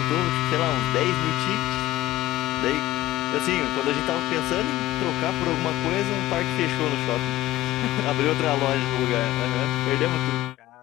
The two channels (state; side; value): quieter; right; 16.1 dB